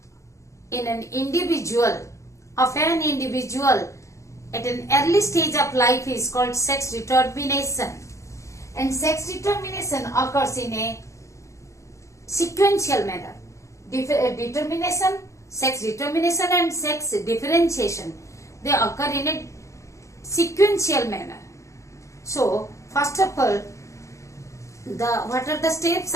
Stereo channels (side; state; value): right; late; 0.15 ms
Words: in an individual, of an individual at an early stage of life is called sex determination. And sex determination occurs in a sequential manner. Determination, sex determination and sex differentiation, they occur in a sequential manner. So, first of all, what are the steps